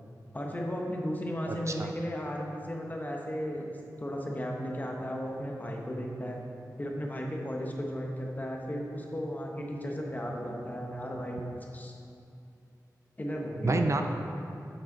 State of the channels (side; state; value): both; normal; correlation 0.89